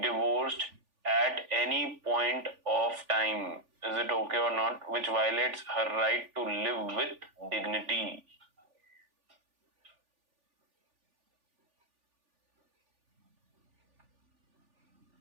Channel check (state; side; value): late; left; 3.4 ms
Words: at any point of time. Is it okay or not? Which violates her right to live with dignity.